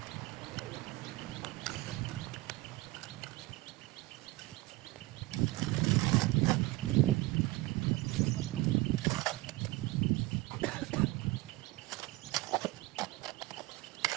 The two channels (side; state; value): left; quieter; 19.7 dB